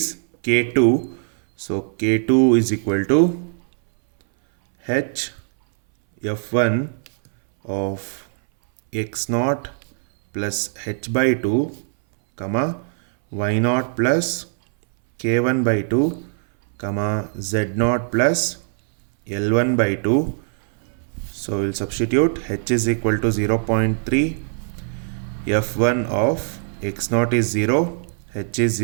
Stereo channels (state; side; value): silent; left; 61 dB below the other